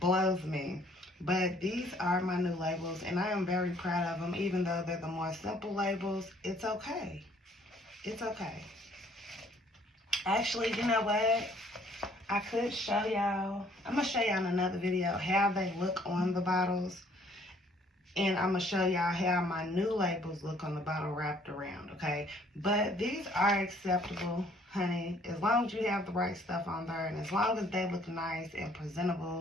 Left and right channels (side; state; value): both; normal; correlation 0.61